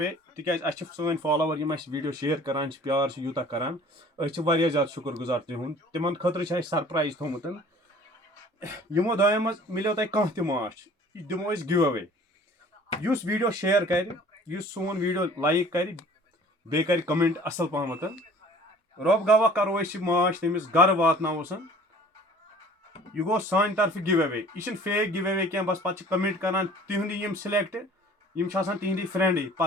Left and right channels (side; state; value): both; normal; correlation 0.49